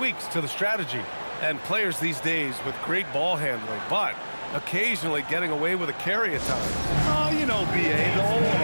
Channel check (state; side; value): inverted; both; correlation -1.00